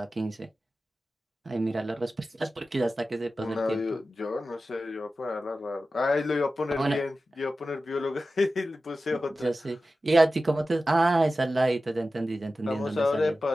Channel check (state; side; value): normal; both; correlation 0.94